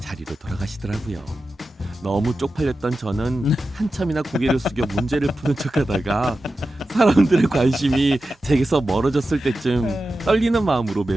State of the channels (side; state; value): both; normal; correlation 0.92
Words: 돌아가시더라고요. 너무 쪽팔렸던 저는 한참이나 고개를 숙여 문제를 푸는 척하다가 사람들의 관심이 제게서 멀어졌을 때쯤 떨리는 마음으로